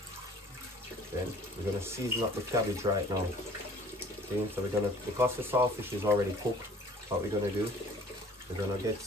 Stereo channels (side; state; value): both; normal; correlation 0.52